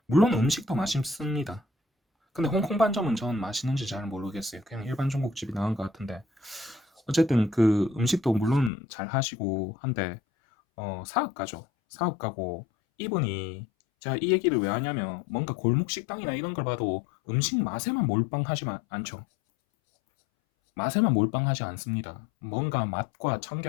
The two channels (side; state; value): right; drops out; at 8.7 s